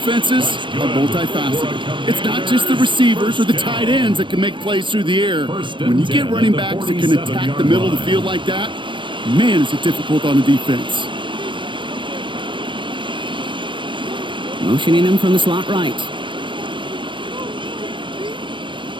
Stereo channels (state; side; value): late; left; 0.23 ms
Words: are multifaceted. It's not just the receivers or the tight ends that can make plays through the air. When you get running backs that can attack the middle of the field like that, man, is it difficult on the defense. Motioning him from the slot right.